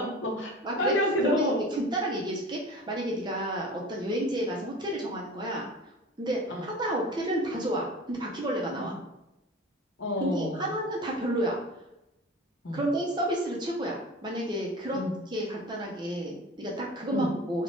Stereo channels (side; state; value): both; normal; correlation 0.37